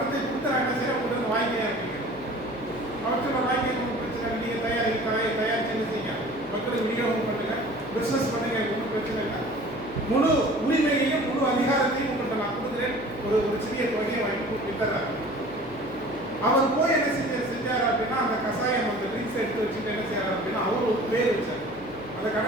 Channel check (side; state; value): left; noise; hum, 18 dB below the sound